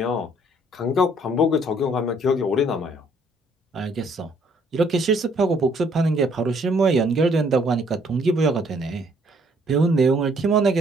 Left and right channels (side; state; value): both; normal; correlation 0.64